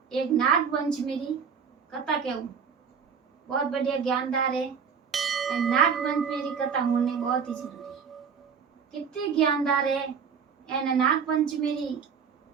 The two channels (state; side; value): quieter; left; 6.5 dB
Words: एक नाग पंचमी री कथा कहूँ। बहुत बढ़िया ज्ञानदार है। नाग पंचमी री कथा होनी बहुत ही जरूरी है। कितनी ज्ञानदार है एने नाग पंचमी री